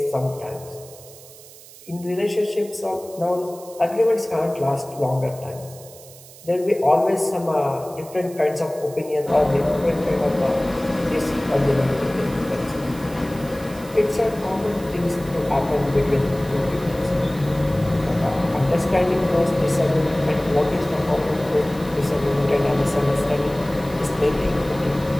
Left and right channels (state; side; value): noise; right; hiss, 20 dB below the sound